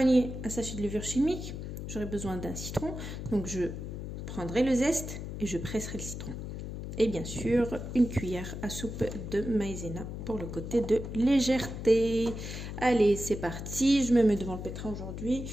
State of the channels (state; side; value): noise; left; hum, 7 dB below the sound